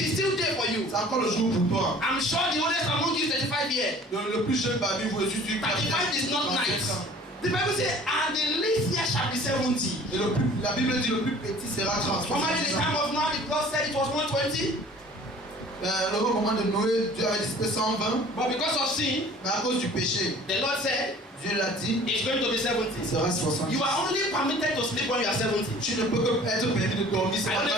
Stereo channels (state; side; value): normal; both; correlation 0.49